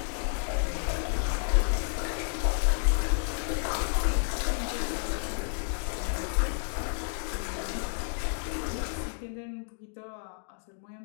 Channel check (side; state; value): right; silent; digital silence